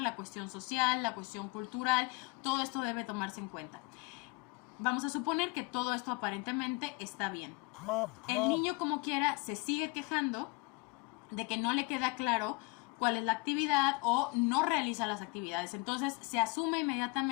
la cuestión social, la cuestión cultural. Todo esto debe tomarse en cuenta. Vamos a suponer que todo esto aparentemente está bien. El niño, como quiera, se sigue quejando de que no le queda claro cuál es la actividad o no realiza las actividades. Entonces se asume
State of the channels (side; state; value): right; quieter; 26.6 dB